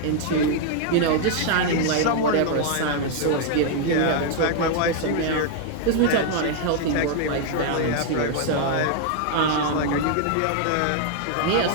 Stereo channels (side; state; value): both; different; correlation 0.00